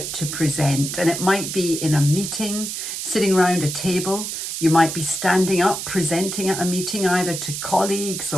to present, and it might be in a meeting, sitting around a table. You might be standing up, presenting at a meeting, either to colleagues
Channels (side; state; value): right; noise; hiss, 5 dB below the sound